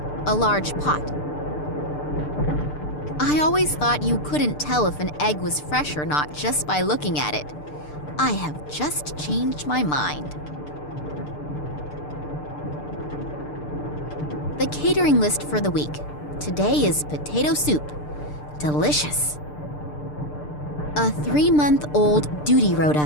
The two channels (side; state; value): right; late; 6.7 ms